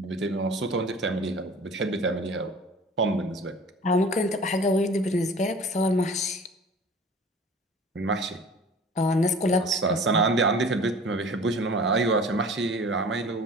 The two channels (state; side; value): normal; both; correlation 0.44